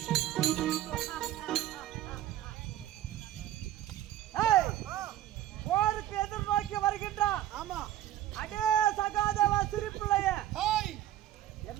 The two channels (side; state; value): left; quieter; 12.8 dB